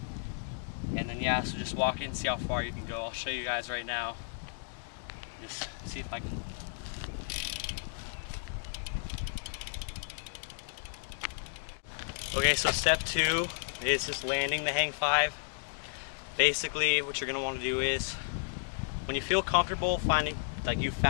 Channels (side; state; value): right; silent; digital silence